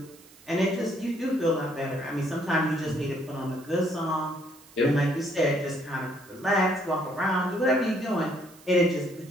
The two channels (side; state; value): right; noise; hiss, 24 dB below the sound